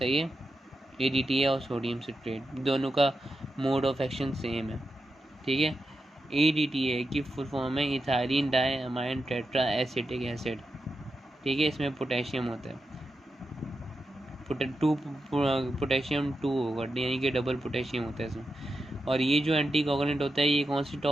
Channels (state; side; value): normal; both; correlation 0.88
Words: है, EDTA और सोडियम सिट्रेट दोनों का मोड ऑफ एक्शन सेम है। ठीक है, EDTA की फुल फॉर्म है ethylene diamine tetra acetic acid. ठीक है, इसमें पोटेशियम होता है, पोटेशियम 2 होगा, यानी कि डबल पोटेशियम होता है इसमें। और ये जो एंटी कोगुलेंट होता है ये कौन सी